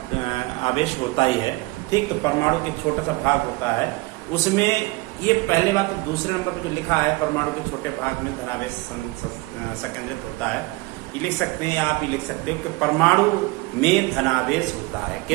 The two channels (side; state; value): left; quieter; 23.1 dB